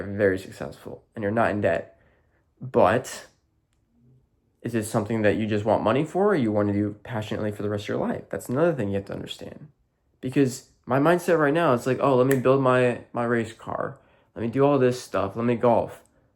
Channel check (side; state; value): both; identical; correlation 1.00